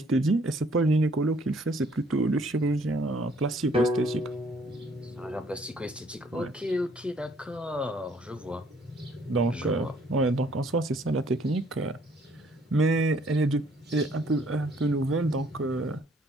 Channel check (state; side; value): normal; both; correlation 0.62